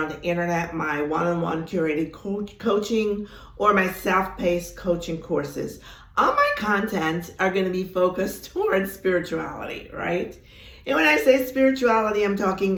the internet, my one-on-one curated coaching or my self-paced coaching courses. All my content are going to be focused towards spirituality, right? And when I say spirituality, I'm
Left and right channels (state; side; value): identical; both; correlation 1.00